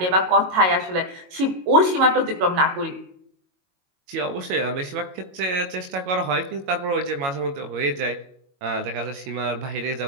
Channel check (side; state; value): left; late; 22 ms